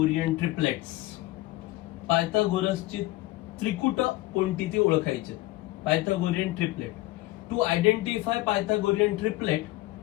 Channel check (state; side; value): quieter; right; 18.3 dB